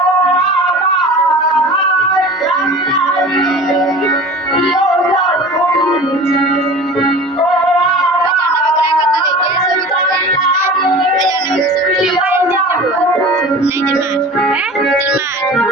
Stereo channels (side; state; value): both; normal; correlation 0.38